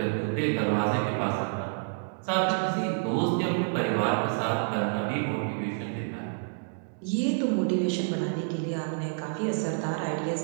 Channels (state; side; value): silent; left; digital silence